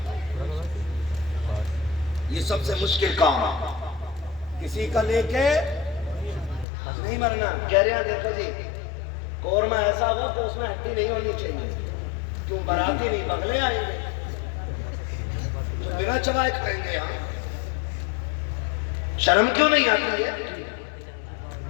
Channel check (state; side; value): drops out; right; at 6.7 s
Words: یہ سب سے مشکل کام ہے. کسی کا لے کے نہیں مرنا. کہہ رہے ہیں دیکھو جی، قورمہ ایسا ہو کہ اس میں ہڈی نہیں ہونی چاہیے. کیوں باراتی نہیں بغلے آئیں گے تو بنا چبائے کھائیں گے. یہاں شرم کیوں نہیں آتی ہے؟